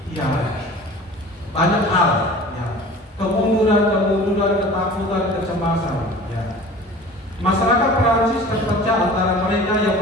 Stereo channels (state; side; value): normal; both; correlation 0.42